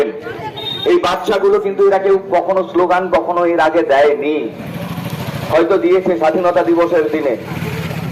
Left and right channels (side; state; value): both; identical; correlation 1.00